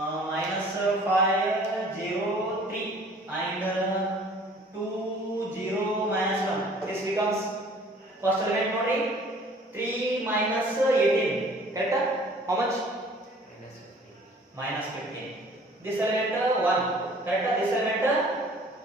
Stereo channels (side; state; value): both; normal; correlation 0.52